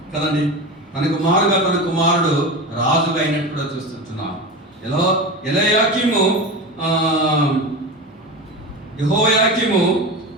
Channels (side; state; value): both; normal; correlation 0.25